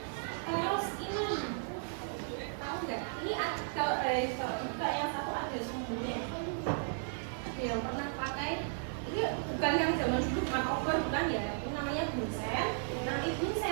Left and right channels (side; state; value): left; silent; digital silence